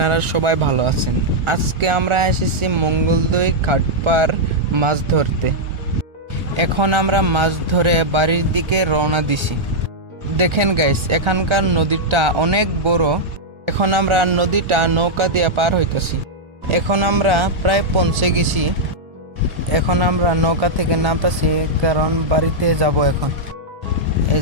সবাই ভালো আছেন। আজকে আমরা এসেছি মঙ্গলদৈ ঘাটপার মাছ ধরতে। এখন আমরা মাছ ধরে বাড়ির দিকে রওনা দিছি। দেখেন গাইস, এখানকার নদীটা অনেক বড়। এখন আমরা নদীটা নৌকা দিয়ে পার হইতেছি। এখন আমরা প্রায় পৌঁছে গেছি। এখন আমরা নৌকা থেকে নামতেছি, কারণ বাড়িতে যাব এখন। এই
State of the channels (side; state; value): left; late; 1.4 ms